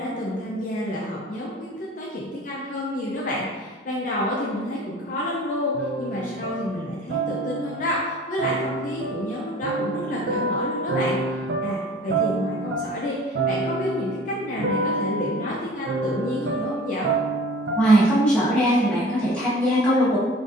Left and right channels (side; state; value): both; normal; correlation 0.45